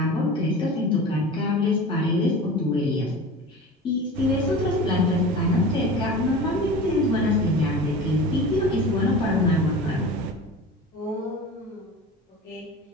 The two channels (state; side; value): normal; both; correlation 0.34